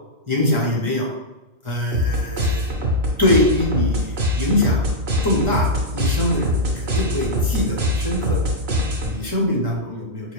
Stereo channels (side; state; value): left; late; 1.4 ms